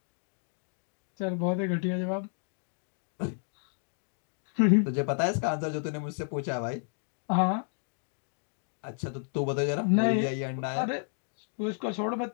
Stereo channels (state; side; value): silent; right; 57 dB below the other